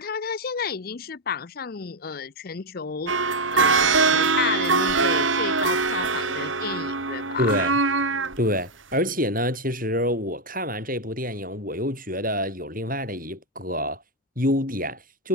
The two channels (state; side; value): normal; both; correlation 0.03